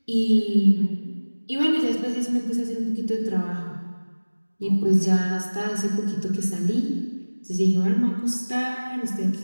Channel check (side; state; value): both; inverted; correlation -1.00